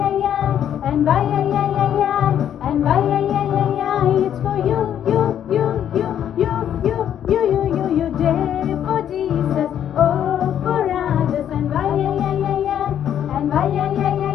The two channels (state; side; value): quieter; right; 9.9 dB